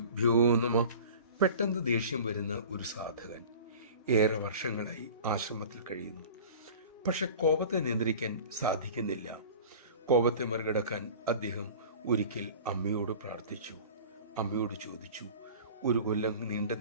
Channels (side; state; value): both; inverted; correlation -0.41